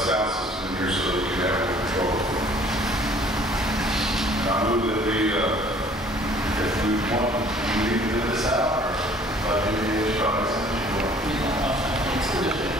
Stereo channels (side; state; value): both; normal; correlation 0.55